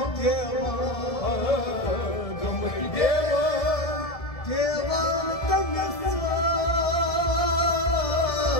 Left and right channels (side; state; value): right; late; 1.7 ms